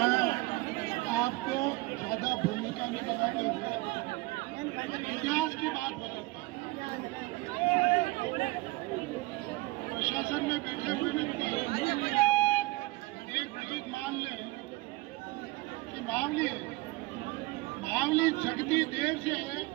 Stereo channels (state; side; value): quieter; left; 21.5 dB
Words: आपको ज्यादा भूमिका में बताते हुए इतिहास की बात बताता हूँ। प्रशासन में बैठे हुए व्यक्ति एक चीज मान लें कि मावली जगती देर से है